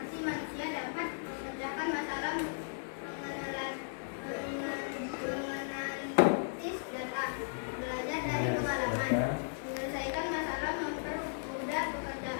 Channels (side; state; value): right; silent; digital silence